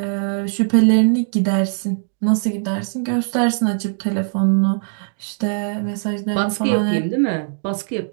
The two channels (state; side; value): silent; left; digital silence